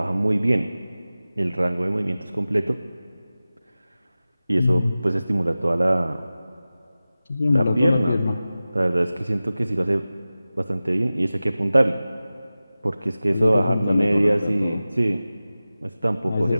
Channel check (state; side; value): inverted; both; correlation -0.96